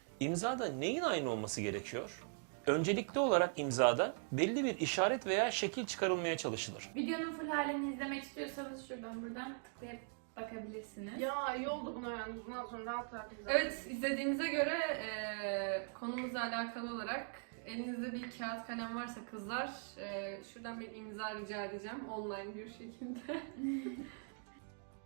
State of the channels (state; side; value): silent; left; 51 dB below the other